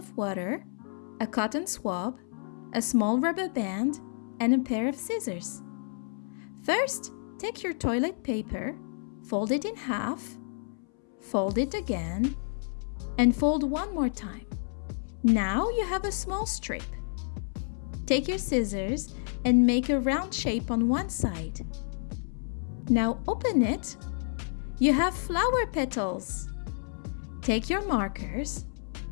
water, a cotton swab, a small rubber band, and a pair of scissors. First, take your toilet paper, fold it in half, fold it again, and fold one more time. Now you have a small strip. Take your scissors and make a round shape on one side. Now open it. You have flower petals. Take your markers.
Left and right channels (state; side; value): silent; right; 58 dB below the other